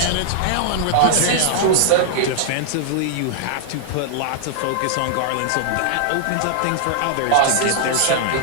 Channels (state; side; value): different; both; correlation -0.01